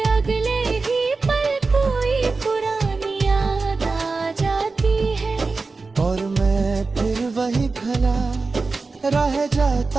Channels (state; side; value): quieter; left; 4.0 dB